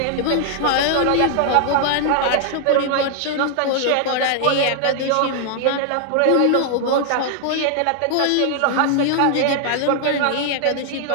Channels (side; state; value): both; different; correlation 0.00